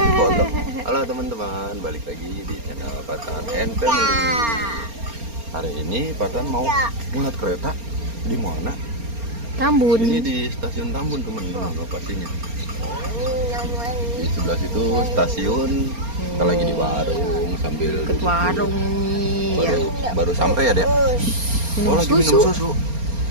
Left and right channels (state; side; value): late; left; 4.3 ms